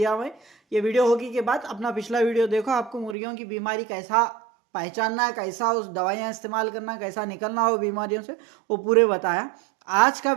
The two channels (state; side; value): drops out; left; at 3.2 s